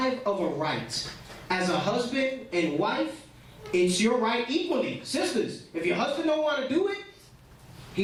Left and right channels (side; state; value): both; identical; correlation 1.00